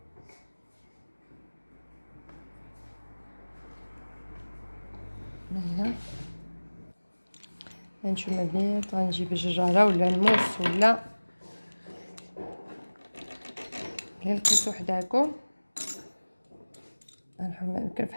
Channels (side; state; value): both; inverted; correlation -1.00